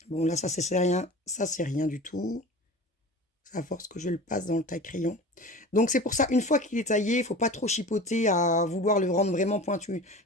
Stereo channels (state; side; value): normal; both; correlation 0.36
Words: Bon, là, c'est rien. Ça, c'est rien du tout. C'est à force que je le passe dans le taille-crayon. Donc, c'est pour ça, une fois qu'il est taillé, il faut pas trop chipoter à vouloir le rendre vraiment pointu.